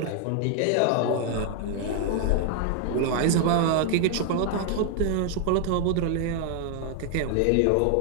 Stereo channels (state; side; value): different; both; correlation 0.00